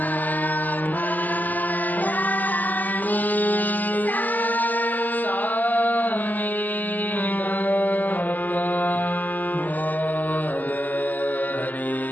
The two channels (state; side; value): late; right; 0.083 ms